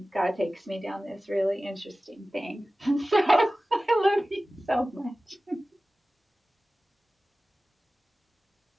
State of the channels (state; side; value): normal; both; correlation 0.96